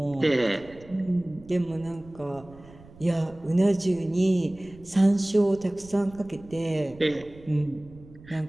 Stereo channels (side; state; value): right; noise; rumble, 22 dB below the sound